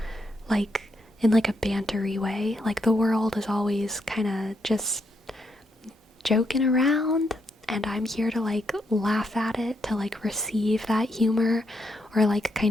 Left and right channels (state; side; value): normal; both; correlation 0.79